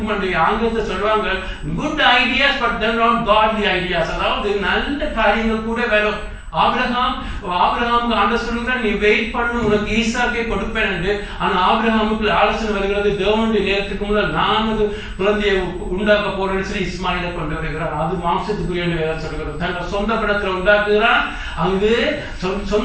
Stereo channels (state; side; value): identical; both; correlation 1.00